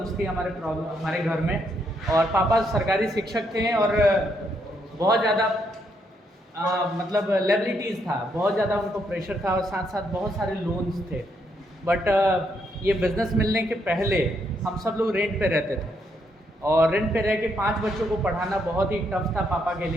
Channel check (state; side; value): normal; both; correlation 0.75